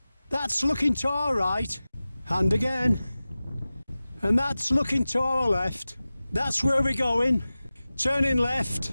That's looking to our right, and again. And that's looking to our left. That's where we're going. Turning left,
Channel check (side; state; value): both; inverted; correlation -0.96